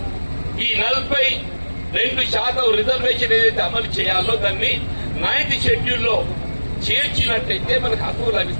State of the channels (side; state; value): both; inverted; correlation -1.00